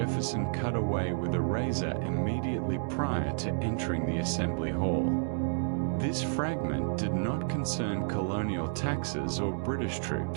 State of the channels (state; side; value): silent; left; digital silence